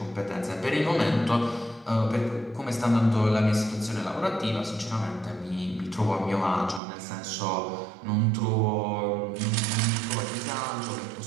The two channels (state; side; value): drops out; left; at 6.8 s